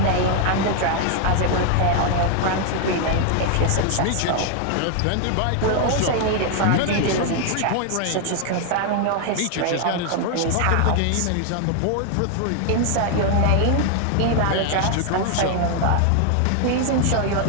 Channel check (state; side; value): different; both; correlation 0.00